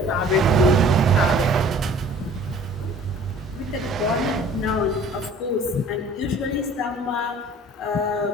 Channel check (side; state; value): both; normal; correlation 0.50